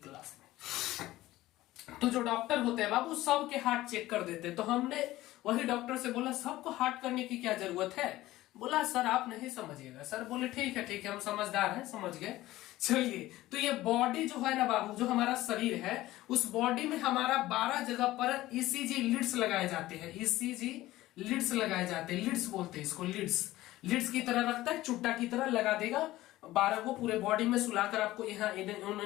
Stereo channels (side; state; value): right; quieter; 16.5 dB